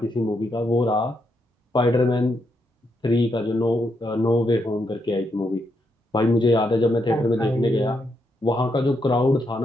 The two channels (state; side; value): normal; both; correlation 0.80